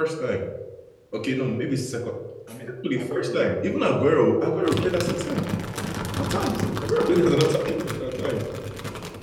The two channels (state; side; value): identical; both; correlation 1.00